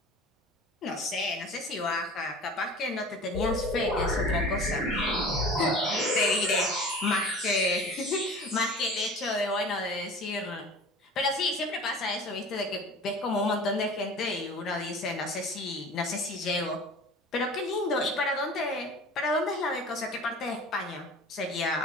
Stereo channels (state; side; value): normal; both; correlation 0.40